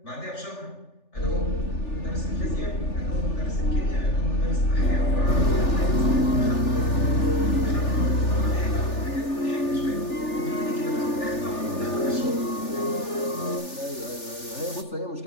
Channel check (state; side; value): late; right; 3.4 ms